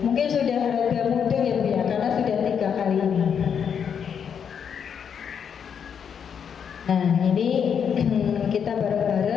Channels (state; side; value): quieter; right; 7.5 dB